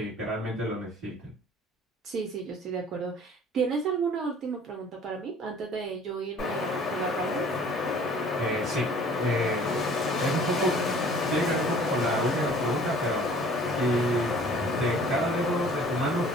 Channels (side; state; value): both; normal; correlation 0.51